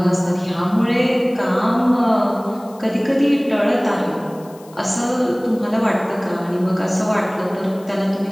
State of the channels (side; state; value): left; noise; hiss, 26 dB below the sound